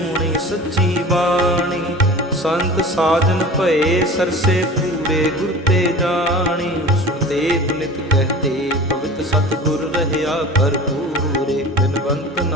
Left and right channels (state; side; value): normal; both; correlation 0.38